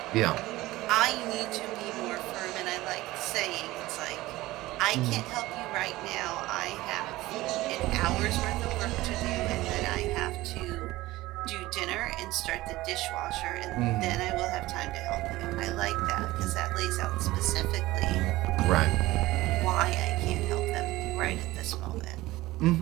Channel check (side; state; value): left; quieter; 18.1 dB